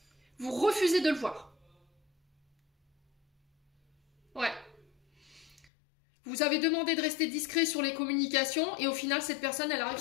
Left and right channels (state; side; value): drops out; right; at 5.7 s